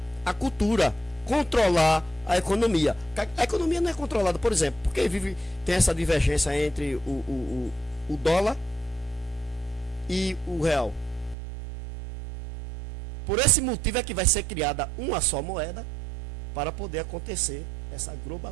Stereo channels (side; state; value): left; drops out; at 11.4 s